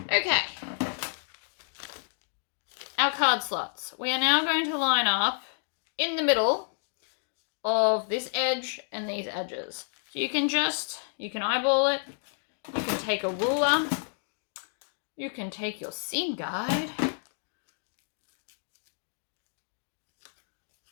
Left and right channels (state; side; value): silent; right; digital silence